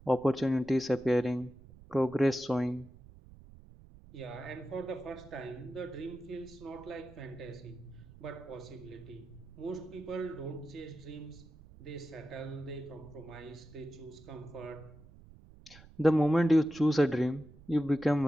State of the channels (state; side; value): noise; right; rumble, 21 dB below the sound